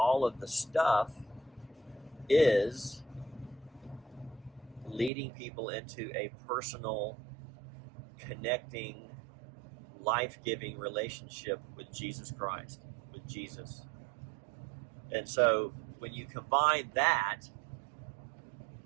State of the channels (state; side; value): drops out; left; at 5.1 s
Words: of the stuff is leading people into a personal, connecting, life-giving relationship with Jesus Christ, with Jesus. And so when you combine that